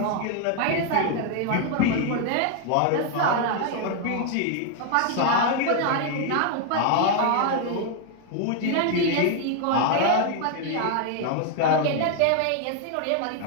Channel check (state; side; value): different; both; correlation 0.00